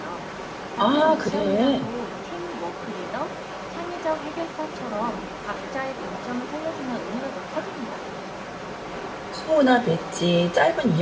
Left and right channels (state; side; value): identical; both; correlation 1.00